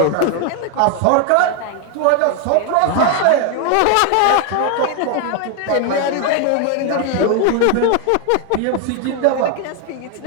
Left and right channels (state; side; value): different; both; correlation 0.01